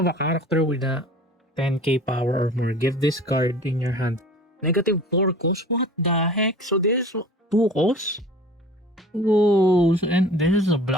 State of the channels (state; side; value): normal; both; correlation 0.44